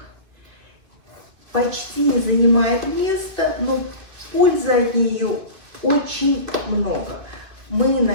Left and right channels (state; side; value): late; left; 2.6 ms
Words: почти не занимает места, но пользы от нее очень много. Мы